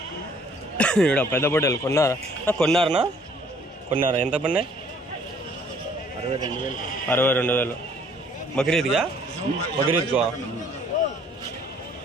ఇక్కడ పెద్ద పొట్టేలు కొన్నారా ఎంత పడినాయి? 62,000. బక్రీద్గా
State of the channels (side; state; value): both; normal; correlation 0.59